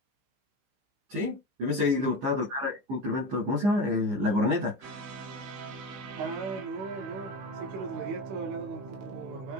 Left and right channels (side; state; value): left; late; 15 ms